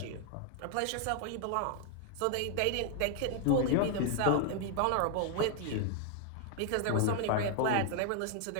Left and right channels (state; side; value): different; both; correlation 0.00